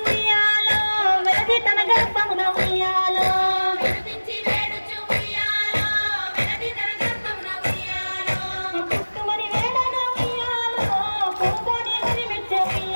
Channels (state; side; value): inverted; both; correlation -1.00